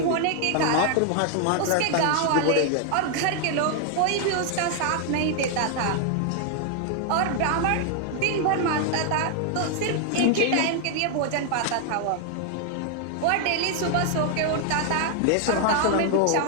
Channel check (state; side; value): different; both; correlation 0.00